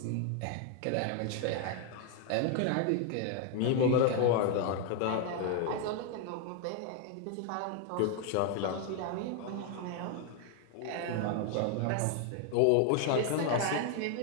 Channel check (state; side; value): different; both; correlation 0.00